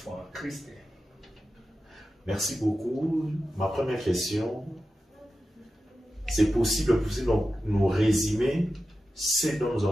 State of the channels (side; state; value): both; normal; correlation 0.92